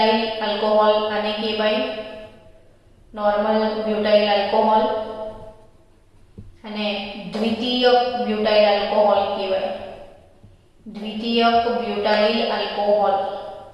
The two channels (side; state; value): both; identical; correlation 1.00